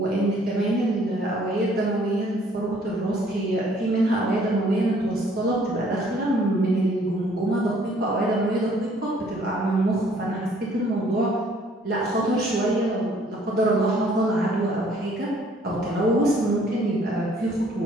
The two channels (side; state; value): both; normal; correlation 0.60